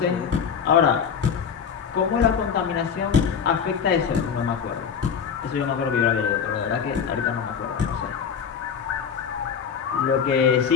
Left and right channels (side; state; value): right; quieter; 7.0 dB